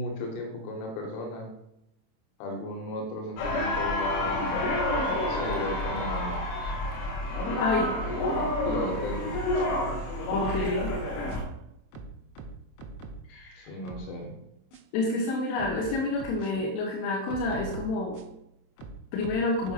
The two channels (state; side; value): late; right; 27 ms